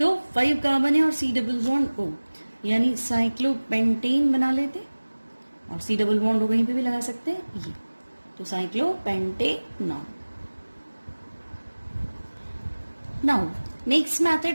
5 कार्बन है और C डबल बॉन्ड O, यानी साइक्लोपेंटेन बना लेते और C डबल बॉन्ड O कहीं पे भी लगा सकते हैं ये, तो साइक्लोपेंटेनॉन। नाउ नेक्स्ट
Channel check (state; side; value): inverted; both; correlation -1.00